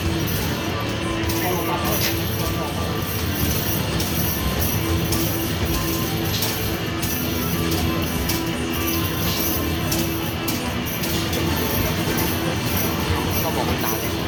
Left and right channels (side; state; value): both; identical; correlation 1.00